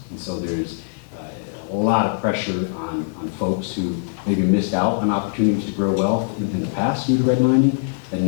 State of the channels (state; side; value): silent; right; digital silence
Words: And so there's a lot of pressure on folks who maybe missed out on opportunities to grow wealth in the past due to redlining, and